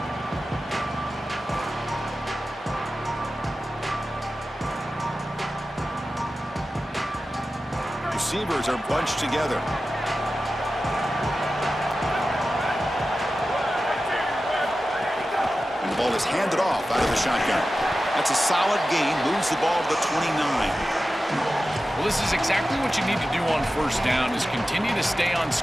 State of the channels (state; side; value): normal; both; correlation 0.94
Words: Receivers are bunched together. And the ball is handed off out of the shotgun. That's a solid gain. Moves the ball to the 29. Well, this is exactly what you need to do on first down is continue to stay on